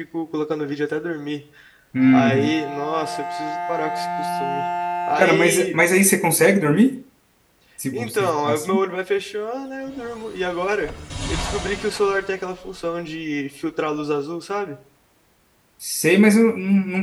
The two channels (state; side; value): identical; both; correlation 1.00